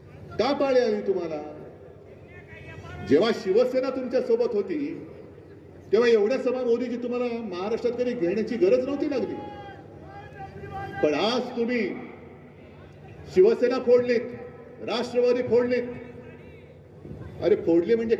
का पाळी आली तुम्हाला. जेव्हा शिवसेना तुमच्या सोबत होती तेव्हा एवढ्या सभा मोदीजी तुम्हाला महाराष्ट्रात कधी घेण्याची गरज नव्हती लागली. पण आज तुम्ही शिवसेना फोडलीत, राष्ट्रवादी फोडलीत. अरे फोडली म्हणजे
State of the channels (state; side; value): identical; both; correlation 1.00